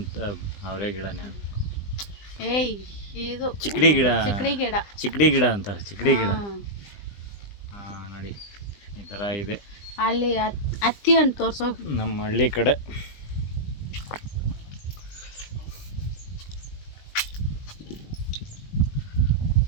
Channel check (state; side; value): late; right; 20 ms